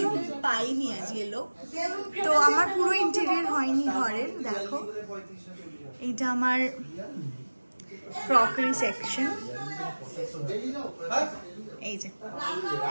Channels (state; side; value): inverted; both; correlation -1.00